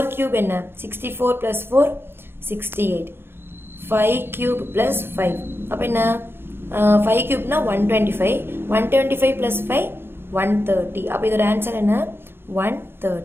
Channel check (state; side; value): late; left; 0.11 ms